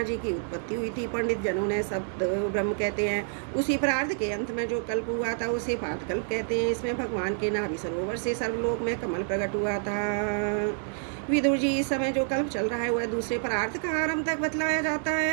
जी की उत्पत्ति हुई थी। पंडित जनों ने सप्त ब्रह्म कहते हैं। उसी परार्थ के अंत में जो कल्प हुआ था उसे पाद कल्प कहते हैं। इसमें भगवान के नाभि सरोवर से सर्वलोक में कमल प्रकट हुआ था। विदुर जी, इस समय जो कल्प चल रहा है वह दूसरे परार्थ का आरंभ तक बतलाया जाता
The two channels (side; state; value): left; silent; digital silence